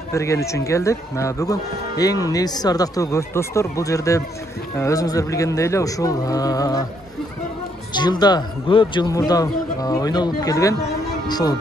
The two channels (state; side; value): normal; both; correlation 0.72